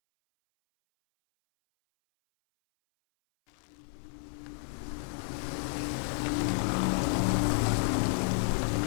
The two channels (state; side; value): silent; right; 57 dB below the other